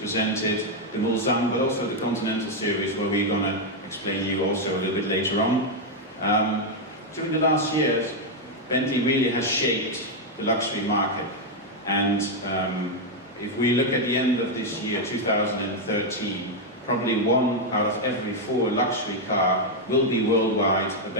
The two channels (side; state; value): both; normal; correlation 0.01